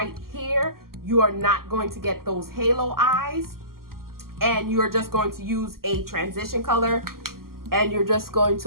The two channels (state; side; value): late; left; 0.92 ms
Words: here, you are not going to get those halo eyes. And you're just going to use a transition color, and you're just going